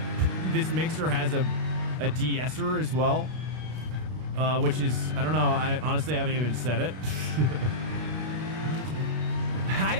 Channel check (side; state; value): left; late; 32 ms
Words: mixer has a de-esser as well, which is, I don't know. I honestly haven't even said it. I